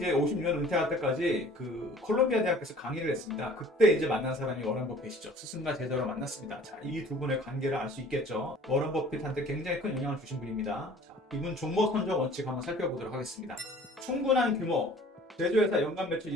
은퇴할 때까지 그 콜롬비아 대학에서 강의를 했습니다. 그때 이제 만난 사람이 워런 버핏이죠. 스승과 제자로 만났습니다. 자, 이 두 분의 관계를 알 수 있겠죠. 워런 버핏한테 굉장히 큰 영향을 주신 분입니다. 자, 이분 종목 선정 원칙 한번 살펴보도록 하겠습니다. 충분한 규모, 제조회사 연간 매출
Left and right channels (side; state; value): both; normal; correlation 0.50